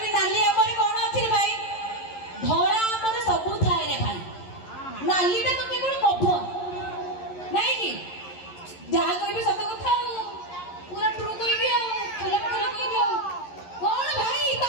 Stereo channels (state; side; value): late; right; 11 ms